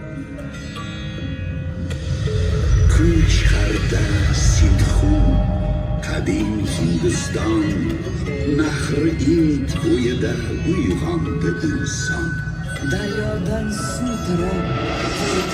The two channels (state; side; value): identical; both; correlation 1.00